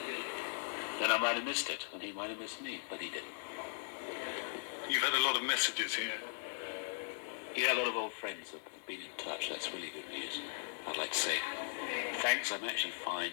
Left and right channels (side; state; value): right; silent; digital silence